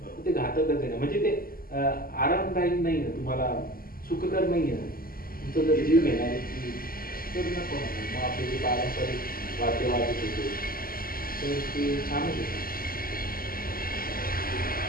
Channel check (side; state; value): right; late; 0.42 ms